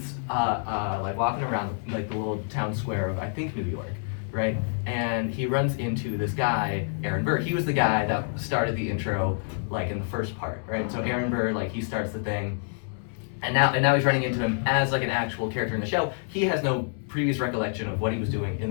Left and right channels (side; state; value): right; silent; 60 dB below the other